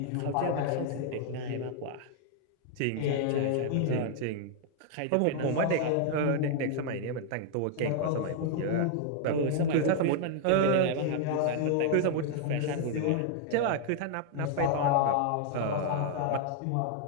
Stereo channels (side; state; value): both; different; correlation 0.00